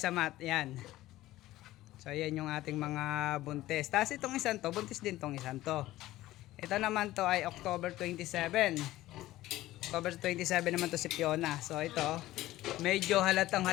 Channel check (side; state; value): right; quieter; 16.1 dB